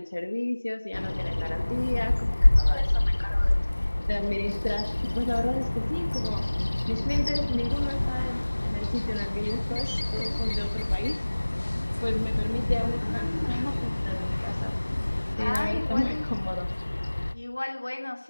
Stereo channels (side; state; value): both; inverted; correlation -1.00